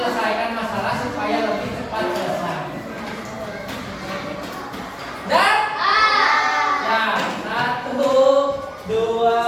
masalah supaya lebih cepat selesai. Dan ya, 1,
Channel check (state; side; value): identical; both; correlation 1.00